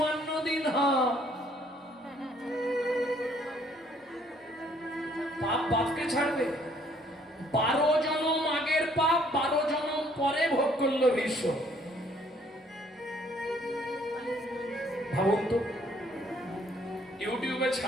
দিন পাপ বাপকে ছাড়বে। 12 জনম আগের পাপ 12 জনম পরে ভোগ করলো ভীষ্ম। ভাবুন তো, ইউটিউবে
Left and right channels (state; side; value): normal; both; correlation 0.63